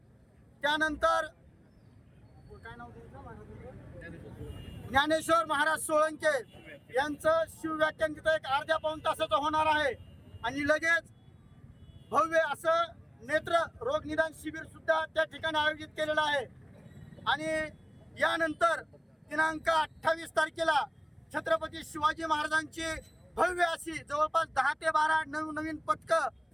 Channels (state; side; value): identical; both; correlation 1.00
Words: त्यानंतर ज्ञानेश्वर महाराज सोळंके यांचं शिवव्याख्यान तिथं एक अर्ध्या पाऊण तासाचं होणार आहे आणि लगेच भव्य असं नेत्र रोग निदान शिबिर सुद्धा त्या ठिकाणी आयोजित केलेलं आहे। आणि यानंतर दिनांक 28 तारखेला छत्रपती शिवाजी महाराजांची भव्य अशी जवळपास 10 ते 12 नवीन पथकं